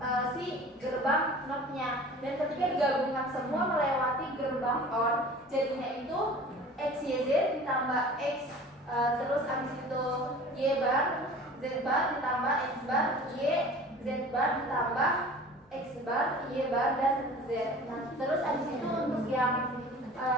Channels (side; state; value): both; normal; correlation 0.42